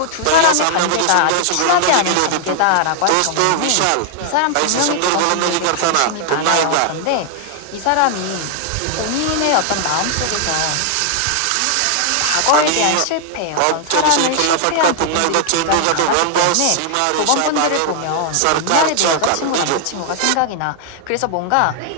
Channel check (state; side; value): different; both; correlation 0.00